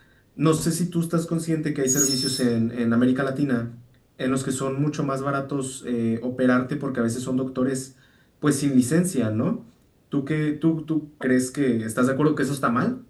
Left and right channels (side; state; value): both; identical; correlation 1.00